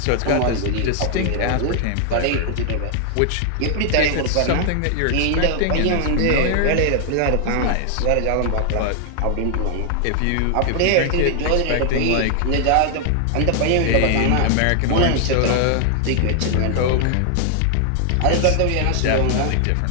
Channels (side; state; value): both; different; correlation 0.00